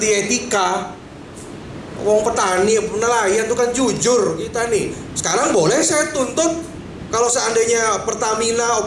etika. Wong petani, nelayan itu kan jujur kita nih. Sekarang boleh saya tuntut kalau seandainya Pertamina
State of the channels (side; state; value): both; identical; correlation 1.00